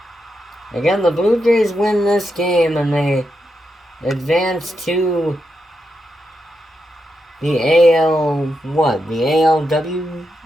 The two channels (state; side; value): normal; both; correlation 0.85